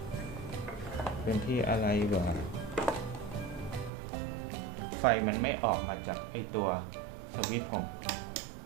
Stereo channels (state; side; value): drops out; left; at 3.9 s